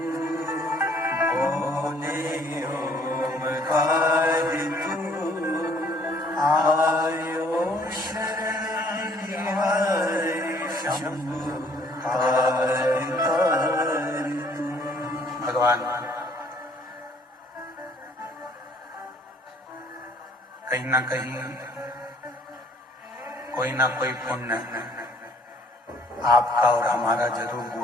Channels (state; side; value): normal; both; correlation 0.60